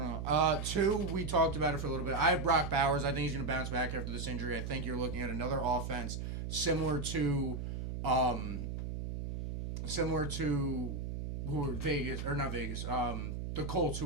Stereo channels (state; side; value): noise; right; hum, 4 dB below the sound